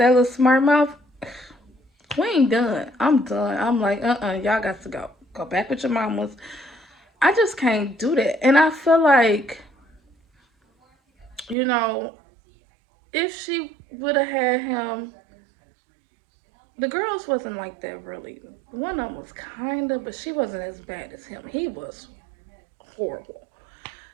little smart mouth, we ain't done. I'm done. I'm like, y'all got to go. Go back with your mamas. I just can't do that. And I feel like, you know, if she would have had him, the girls wasn't like that really. One of them was kinda, but she wasn't as bad as him. He was horrible.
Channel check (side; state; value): left; drops out; at 11.6 s